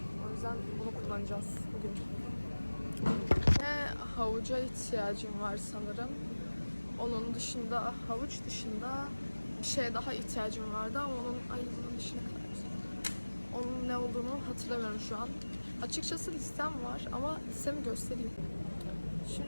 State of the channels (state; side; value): inverted; both; correlation -1.00